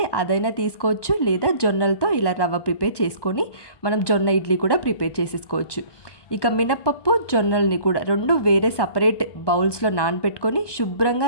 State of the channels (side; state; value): right; late; 1.1 ms